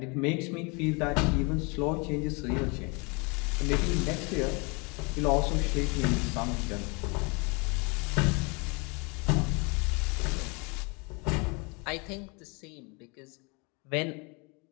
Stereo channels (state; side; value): quieter; right; 30.3 dB